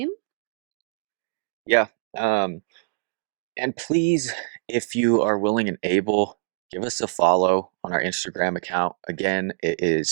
Yeah. And please, if you are willing and able, give us a follow on our Instagram account. Again, it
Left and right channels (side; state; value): left; silent; digital silence